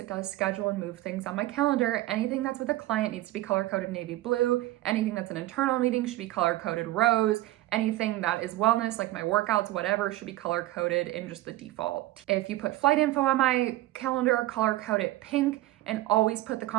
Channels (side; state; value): left; quieter; 16.7 dB